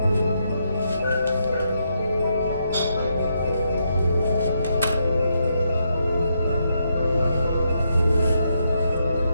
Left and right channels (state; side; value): inverted; both; correlation -0.79